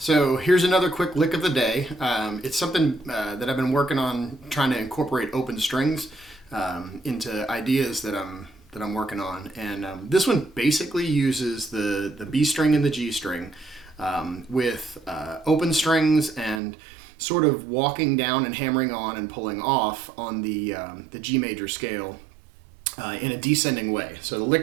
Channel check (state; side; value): drops out; left; at 16.6 s